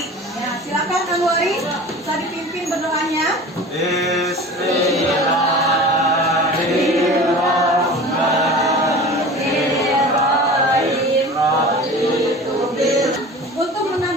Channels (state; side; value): normal; both; correlation 0.38